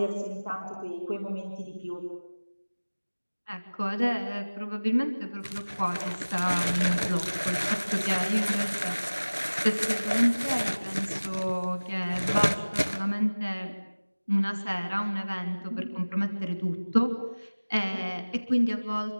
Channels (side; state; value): both; inverted; correlation -1.00